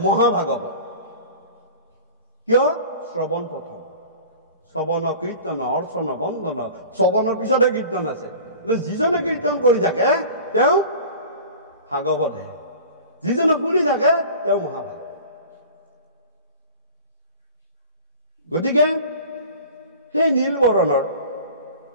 মহাভাগৱত। কিয়? শ্ৰৱণ প্ৰথম, শ্ৰৱণ কীৰ্তন অৰ্চন বন্দন, শ্ৰৱণৰ পিছতে কীৰ্তন আছে। যিজনে কীৰ্তন কৰি থাকে তেওঁ ভাগৱতহে, যিজনে শুনি থাকে তেওঁ মহাভাগৱত। গতিকে সেই নীলবৰণৰ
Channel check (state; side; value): inverted; both; correlation -0.40